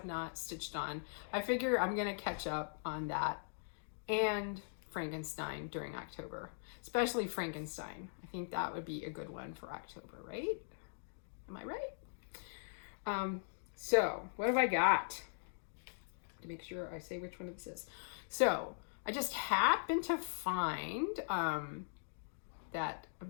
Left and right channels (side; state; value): right; silent; digital silence